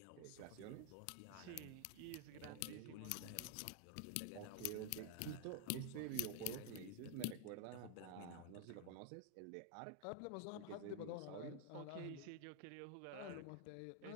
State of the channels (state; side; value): different; both; correlation 0.00